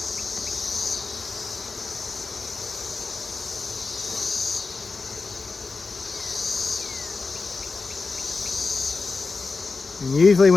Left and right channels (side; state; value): right; quieter; 4.2 dB